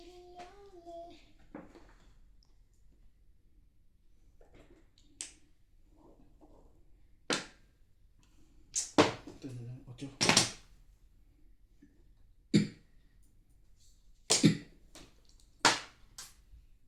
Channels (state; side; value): identical; both; correlation 1.00